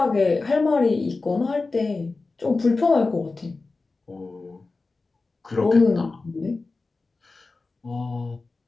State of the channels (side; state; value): right; quieter; 3.7 dB